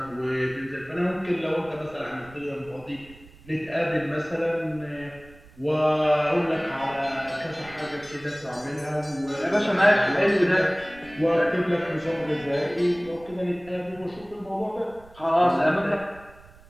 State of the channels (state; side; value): noise; right; rumble, 23 dB below the sound